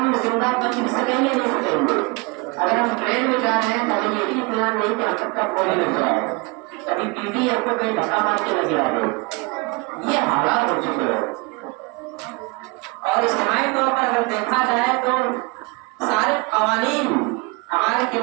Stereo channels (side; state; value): left; quieter; 27.8 dB